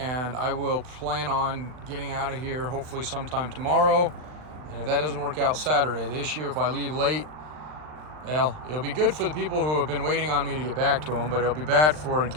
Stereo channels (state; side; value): late; left; 39 ms